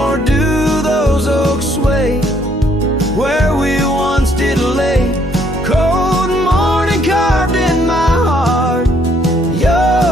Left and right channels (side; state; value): both; normal; correlation 0.67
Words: do those oaks sway where we once did lay. Cold morning carved in my heart,